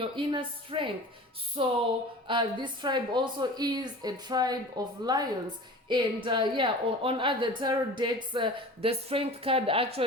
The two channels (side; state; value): both; normal; correlation 0.38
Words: inner strength. So this tribe also is a tribe of lions. And on other tarot decks, the strength card